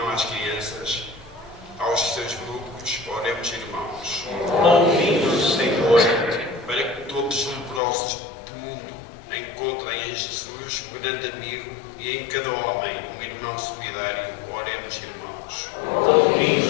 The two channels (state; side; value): drops out; right; at 7.8 s